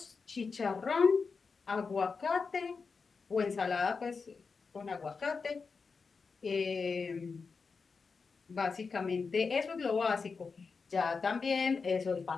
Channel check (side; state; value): right; quieter; 4.9 dB